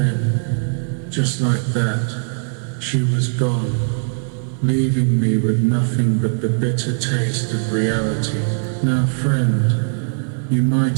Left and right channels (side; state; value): left; silent; 56 dB below the other